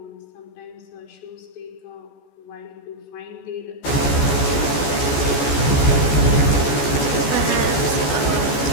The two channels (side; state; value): right; late; 14 ms